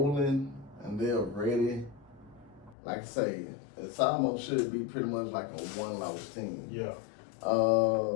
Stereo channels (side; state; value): right; drops out; at 2.8 s